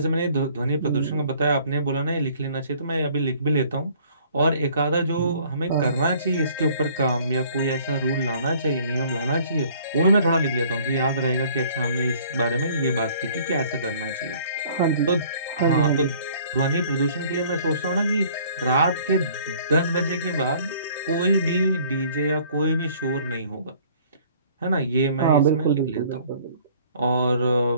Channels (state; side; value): inverted; both; correlation -0.56